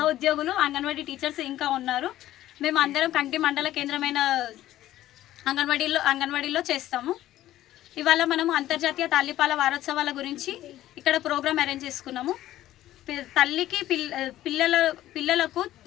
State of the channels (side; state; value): right; quieter; 14.0 dB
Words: అంగన్వాడీ టీచర్స్ ఇంకా ఉన్నారు. మేము అందరం కంటి మండల కేంద్రమైన అంగన్వాడీలో చేస్తాము. ఇవాళ మనము అంతర్జాతీయ తల్లిపాల వారోత్సవాల గురించి ఇక్కడ ప్రోగ్రామ్ అరేంజ్ చేసుకున్నాము. తల్లికి పిల్లలకు